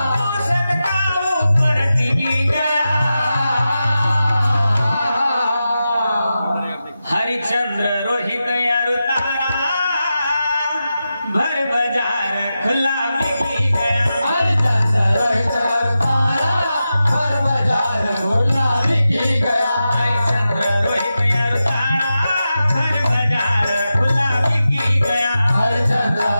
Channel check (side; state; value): both; inverted; correlation -0.91